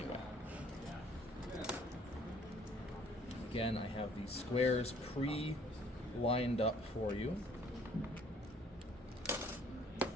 Again, I have these squares pre-lined up for you.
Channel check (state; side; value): normal; both; correlation 0.59